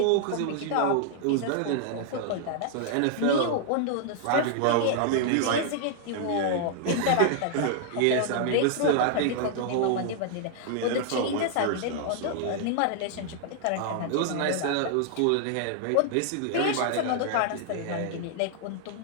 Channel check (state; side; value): different; both; correlation -0.01